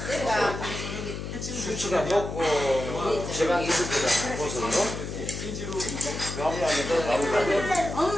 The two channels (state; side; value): noise; left; hum, 6 dB below the sound